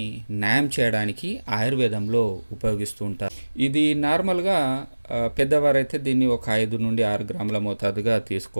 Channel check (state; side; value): inverted; both; correlation -1.00